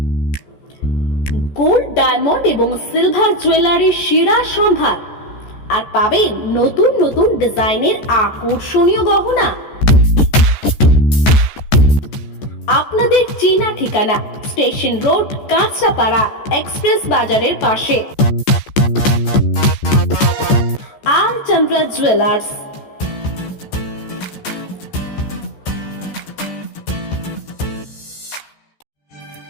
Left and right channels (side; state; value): right; late; 14 ms